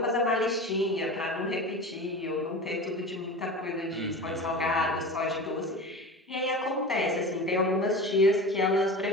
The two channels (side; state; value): both; normal; correlation 0.32